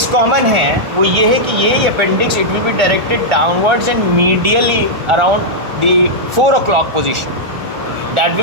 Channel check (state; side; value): late; left; 1.4 ms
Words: कॉमन है वो ये है कि ये appendix it will be directed downwards and medially around the 4 o'clock position. That